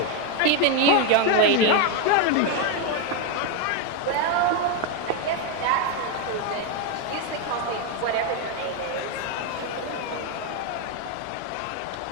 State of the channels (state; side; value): different; both; correlation 0.02